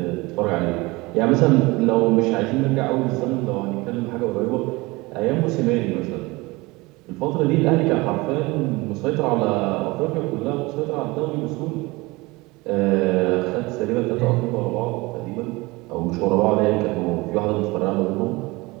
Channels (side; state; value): left; quieter; 23.0 dB